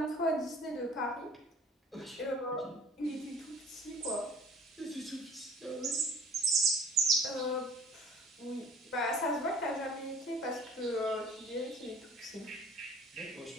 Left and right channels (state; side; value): normal; both; correlation 0.49